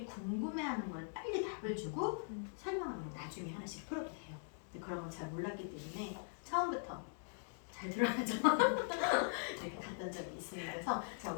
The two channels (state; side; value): silent; right; digital silence